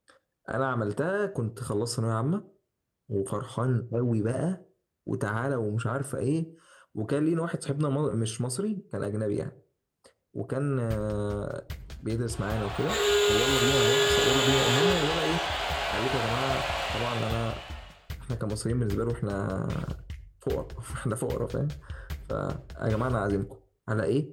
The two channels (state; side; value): identical; both; correlation 1.00